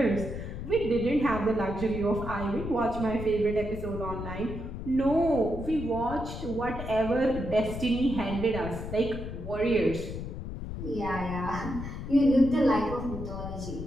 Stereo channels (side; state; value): left; noise; rumble, 7 dB below the sound